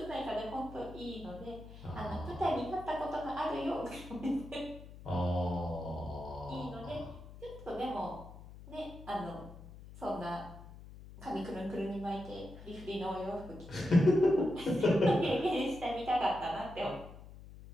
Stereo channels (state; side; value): noise; left; hum, 16 dB below the sound